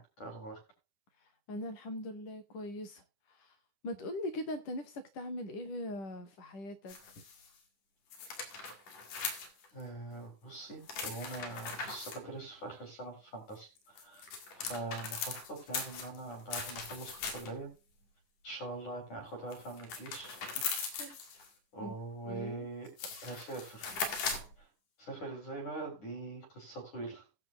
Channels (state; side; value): late; right; 10 ms